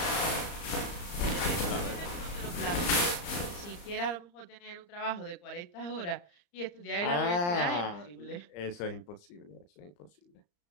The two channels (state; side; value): late; right; 34 ms